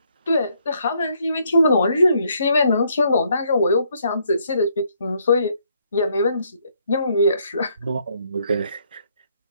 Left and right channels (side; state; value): both; inverted; correlation -0.71